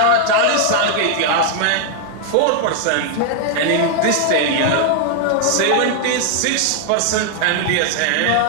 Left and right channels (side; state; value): both; different; correlation 0.00